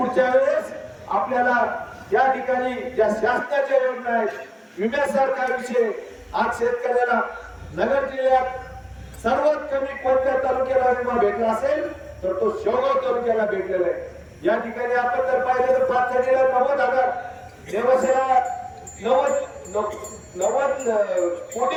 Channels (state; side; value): identical; both; correlation 1.00